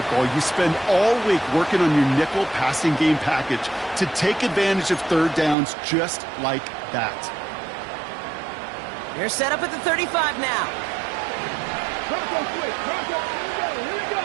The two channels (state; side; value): drops out; left; at 5.6 s